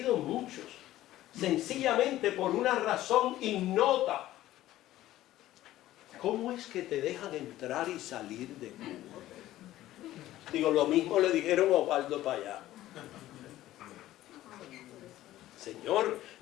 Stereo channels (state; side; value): quieter; right; 14.7 dB